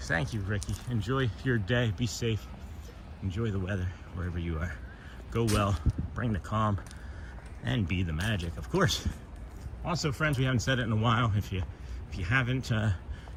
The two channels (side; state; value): both; identical; correlation 1.00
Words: you, Ricky. Enjoy your day. Be safe. Enjoy the weather wherever you are. Go well. Bring the calm, and be the magic, of course. Also, friends, we haven't said it in a while. If you haven't